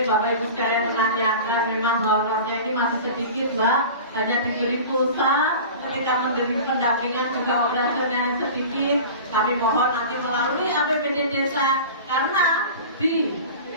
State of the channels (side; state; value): both; inverted; correlation -0.36